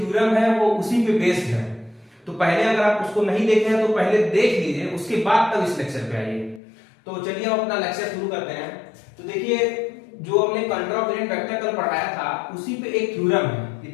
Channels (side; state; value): right; drops out; at 6.6 s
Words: है वो उसी पे बेस्ड है। तो पहले अगर आप उसको नहीं देखे हैं तो पहले देख लीजिए, उसके बाद तब इस लेक्चर पे आइए। तो चलिए हम अपना लेक्चर शुरू करते हैं। तो देखिए, जो हमने कॉन्ट्रावेरिएंट वेक्टर कल पढ़ाया था उसी पे एक थ्योरम है।